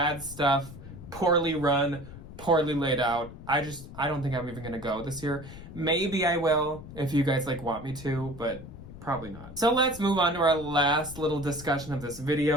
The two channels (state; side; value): noise; left; rumble, 14 dB below the sound